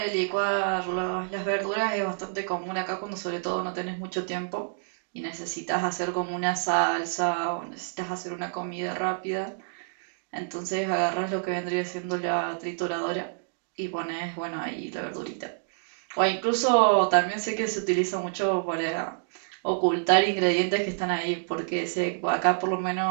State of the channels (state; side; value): silent; left; digital silence